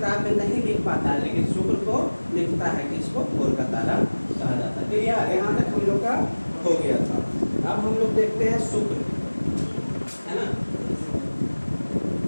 में नहीं लिख पाता है, लेकिन शुक्र को लिखता है कि इसको भोर का तारा कहा जाता है। क्लियर, यहाँ तक हम लोग का हो गया था। अब हम लोग देखते हैं शुक्र, है ना।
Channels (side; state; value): both; inverted; correlation -1.00